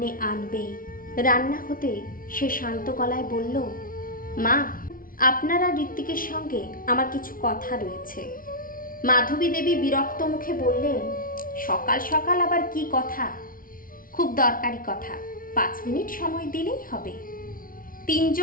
আনবেই। রান্না হতে সে শান্ত গলায় বলল, মা, আপনার আর ঋত্বিকের সঙ্গে আমার কিছু কথা রয়েছে। মাধবী দেবী বিরক্ত মুখে বললেন, সকাল সকাল আবার কি কথা? খুব দরকারি কথা, 5 মিনিট সময় দিলেই হবে।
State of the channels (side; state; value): right; late; 0.41 ms